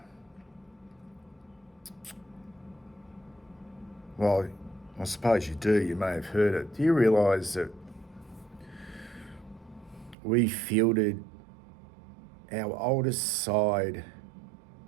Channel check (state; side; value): drops out; left; at 10.2 s